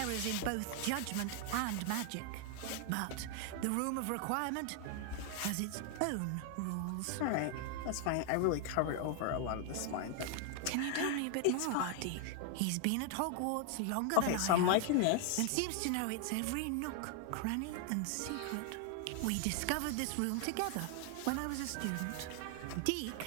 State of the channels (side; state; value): both; different; correlation 0.00